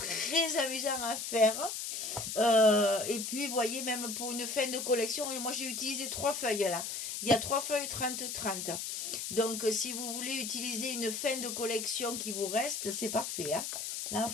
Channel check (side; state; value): left; noise; hiss, 4 dB below the sound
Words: amusant à faire. Et puis, vous voyez, même pour une fin de collection, moi, j'ai utilisé 3 feuilles là. Il y a 3 feuilles 30-30. Donc, si vous voulez utiliser une fin de collection qui vous reste, c'est parfait, hein. Là,